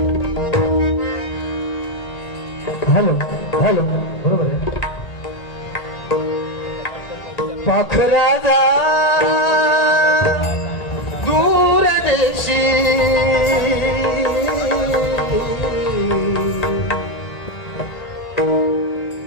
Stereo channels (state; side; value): late; right; 1.8 ms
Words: हॅलो हॅलो बरोबर आहे. पाखराजा दूर देशी